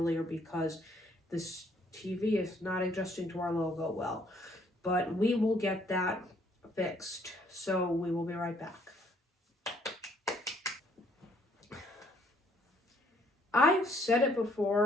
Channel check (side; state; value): both; normal; correlation 0.66